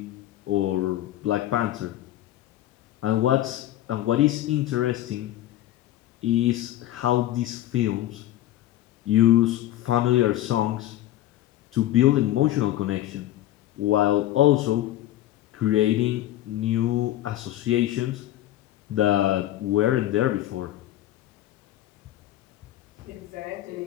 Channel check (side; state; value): right; quieter; 13.8 dB